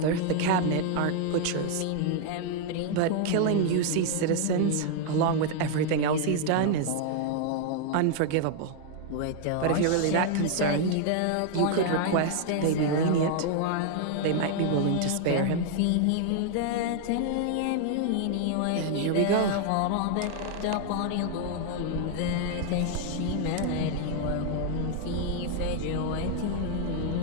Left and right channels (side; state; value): both; different; correlation 0.00